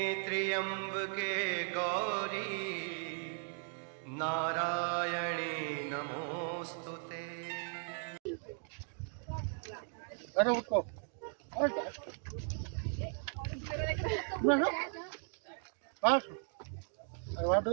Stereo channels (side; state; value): left; silent; 53 dB below the other